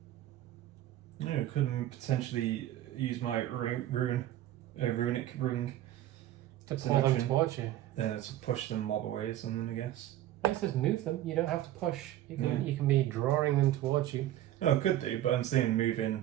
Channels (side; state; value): left; quieter; 13.3 dB